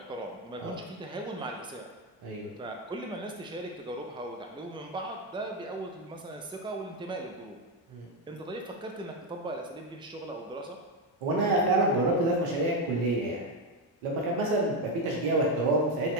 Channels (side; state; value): both; normal; correlation 0.08